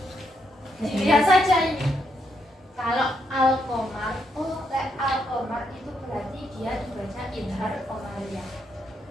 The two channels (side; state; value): both; normal; correlation 0.78